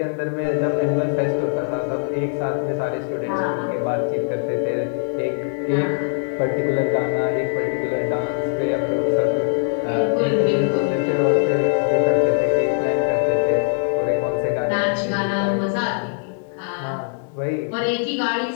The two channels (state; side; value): silent; right; digital silence